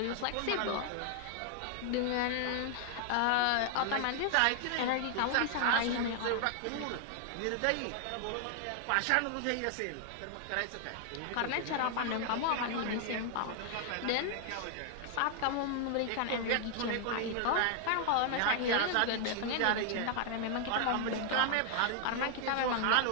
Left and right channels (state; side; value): different; both; correlation 0.00